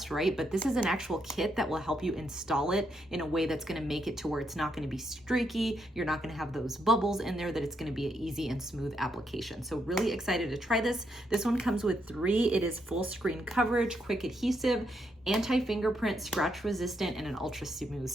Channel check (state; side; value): normal; both; correlation 0.79